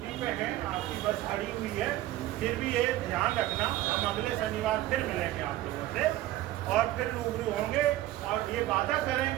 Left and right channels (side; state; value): left; quieter; 15.3 dB